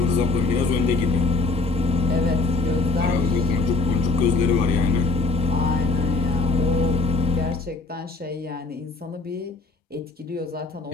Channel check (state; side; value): quieter; right; 3.8 dB